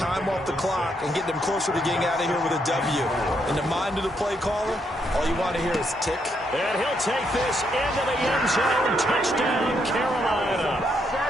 off the clock and get them closer to getting out of here with a W. In the mind of the play caller, all you want to hear is tick. And he'll take this into the end zone. Touchdown, Carolina.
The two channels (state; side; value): normal; both; correlation 0.76